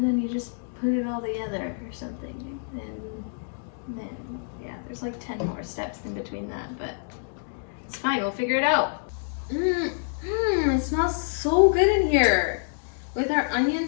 then you just put it all together or something, and then, yeah, there's like 10 more steps in between that, but it's fine, we'll figure it out. It smells so good in here. With our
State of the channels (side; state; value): right; silent; digital silence